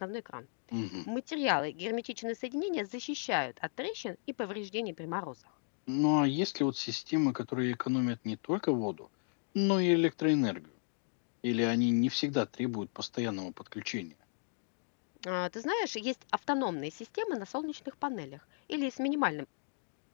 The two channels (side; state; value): right; silent; digital silence